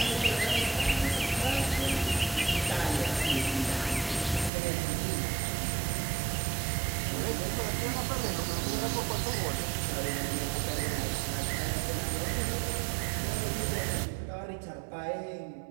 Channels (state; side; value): drops out; left; at 4.5 s